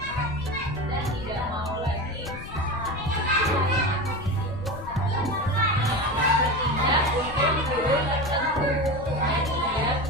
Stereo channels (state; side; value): noise; left; rumble, 13 dB below the sound